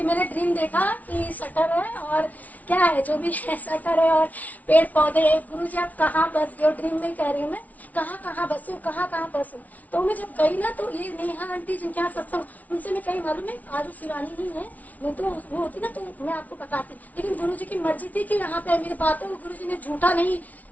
मैंने ड्रीम देखा कि शटर है और क्या है जो भी है, शटर है और पेड़ पौधे है। गुरु जी आप कहाँ बस गए, ड्रीम में कह रही हूँ मैं, कहाँ बसू, कहाँ बसू। तो मैं जब गई ना, तो ये नेहा आंटी जिनके यहाँ सत्संग, उनसे मैं कहीं मालूम है, आज वो शिवानी ही है, नहीं तो वो होती ना तो मैं आपको बताती। लेकिन गुरु जी की मर्जी थी कि यहाँ पे मेरी बातों को गुरु जी ने झूठा नहीं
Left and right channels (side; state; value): right; late; 0.073 ms